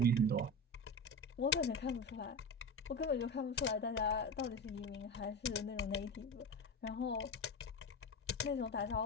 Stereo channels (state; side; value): normal; both; correlation 0.23